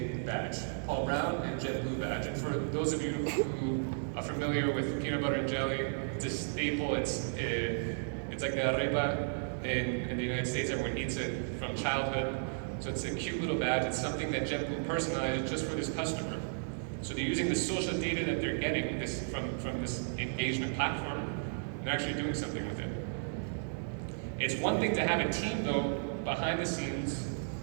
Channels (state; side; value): silent; left; digital silence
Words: badge, Paul Brown and JetBlue badge. And for those of you who are familiar with peanut butter and jelly, it's a staple. It's like the arepa in the United States. Everyone eats it from childhood. So it's a cute little badge. It's something that JetBlue personalized just for this customer. So they're using the social data that they're getting from this engagement platform, and they're actually doing something with it. It's one thing to have a team, though, behind the scenes,